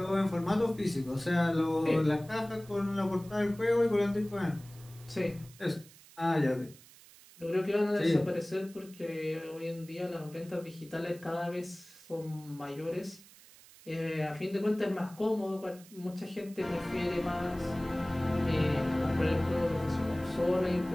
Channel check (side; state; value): right; noise; hiss, 22 dB below the sound